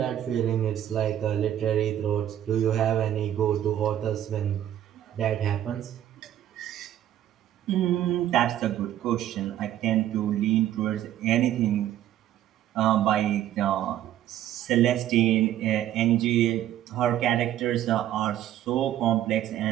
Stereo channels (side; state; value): left; quieter; 11.9 dB